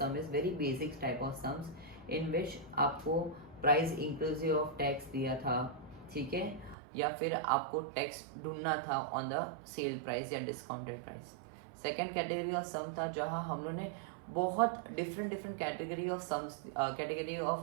is very basic type of sums in which आपको price inclusive of tax दिया था, ठीक है, या फिर आपको टैक्स ढूंढना था on the sale price या discounted price. Second category of sum था जहाँ हम लोगों ने बहुत different category of sums, category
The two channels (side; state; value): left; drops out; at 6.8 s